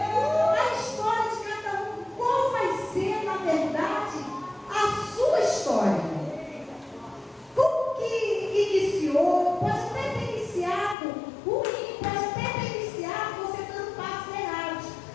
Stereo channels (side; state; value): right; drops out; at 11.0 s